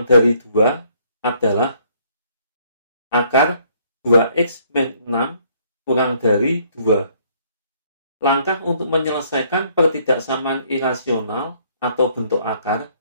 dari 2 adalah akar 2x min 6 kurang dari 2. Langkah untuk menyelesaikan pertidaksamaan irasional atau bentuk akar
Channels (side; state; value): both; inverted; correlation -0.65